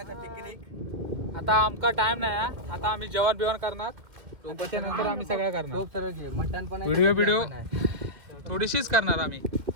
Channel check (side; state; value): left; late; 2.3 ms